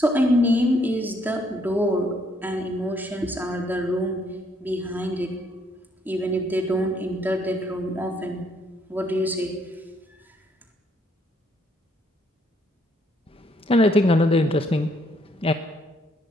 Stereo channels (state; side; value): normal; both; correlation 0.69